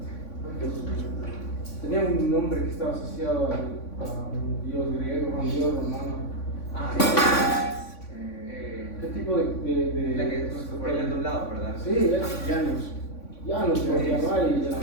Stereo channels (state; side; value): late; right; 3.5 ms